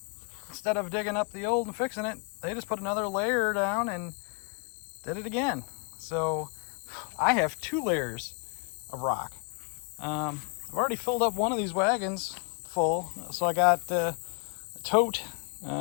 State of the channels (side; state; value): right; quieter; 35.0 dB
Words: instead of digging up the old and fixing it, they just put another layer down and did it again. So I have 2 layers of rock. I've already filled up one of these wagons full, so I got a tote,